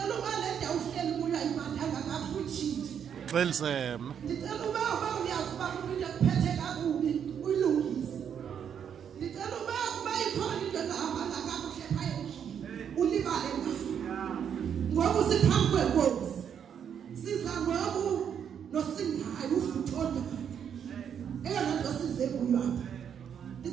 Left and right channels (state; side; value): quieter; left; 8.2 dB